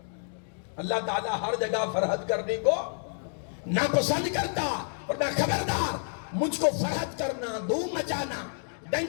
اللہ تعالیٰ ہر جگہ فرحت کرنے کو ناپسند کرتا، اور میں خبردار، مجھ کو فرحت کرنا، دھوم مچانا،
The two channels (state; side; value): silent; right; 58 dB below the other